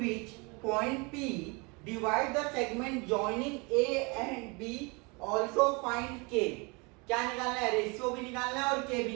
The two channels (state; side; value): quieter; left; 29.4 dB